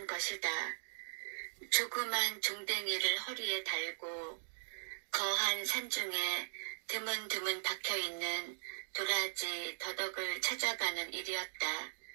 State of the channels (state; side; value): silent; left; digital silence